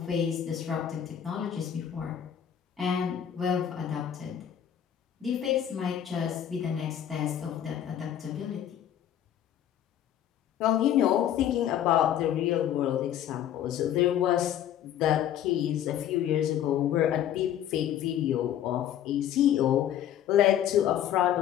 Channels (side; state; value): right; quieter; 10.4 dB